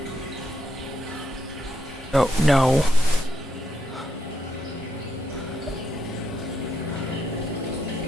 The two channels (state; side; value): normal; both; correlation 0.80